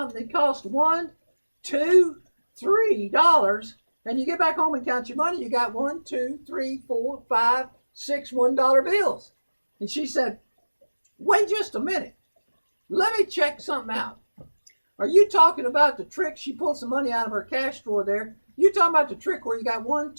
that costs $1, $2, $3, and you get back home and count your money, you got 1, 2, 3, 4, 5, 6 $1 bills. And she said, wait just a minute. Let me check something out. Are you talking about the trick? She pulled some money out of her cash drawer there. You talking about the trick where you got 1,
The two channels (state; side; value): inverted; both; correlation -1.00